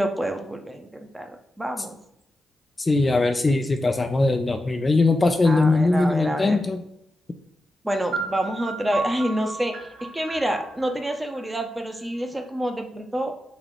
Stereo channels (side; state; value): both; normal; correlation 0.90